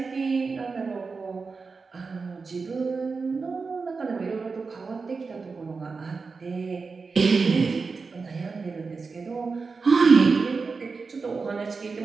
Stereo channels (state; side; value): quieter; left; 4.6 dB